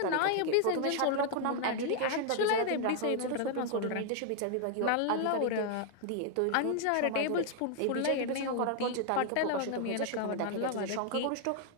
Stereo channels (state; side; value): different; both; correlation 0.00